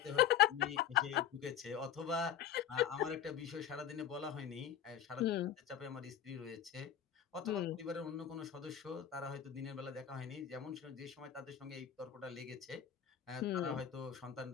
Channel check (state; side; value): quieter; right; 9.6 dB